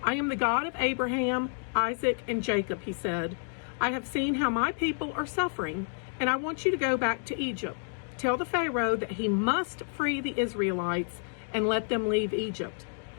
I am the God of Abraham, Isaac, and Jacob, He said. I have seen how my people are suffering, and I want you to go back to Egypt. Tell the Pharaoh that he must free the Israelites and let them leave Egypt.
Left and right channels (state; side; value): silent; right; 58 dB below the other